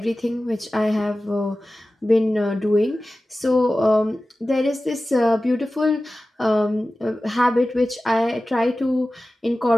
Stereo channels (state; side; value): normal; both; correlation 0.95